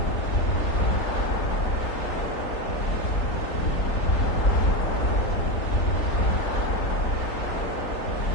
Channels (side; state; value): right; late; 3.6 ms